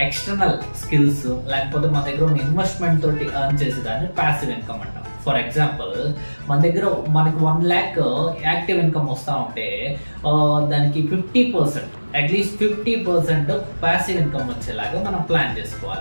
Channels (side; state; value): both; inverted; correlation -1.00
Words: ఎక్స్టర్నల్ స్కిల్స్ లేకపోతే మన దగ్గర ఉన్న ఇన్వెస్ట్మెంట్ తోటి ఎర్న్ చేసేదాన్ని ప్యాసివ్ ఇన్కమ్ అంటాం. ఫర్ ఎగ్జాంపుల్, మనకి 1 lakh యాక్టివ్ ఇన్కమ్ వస్తూ ఉంటే దానికి 50%, అట్లీస్ట్ 50% ప్యాసివ్ ఇన్కమ్ వచ్చేలాగా మనం ప్లాన్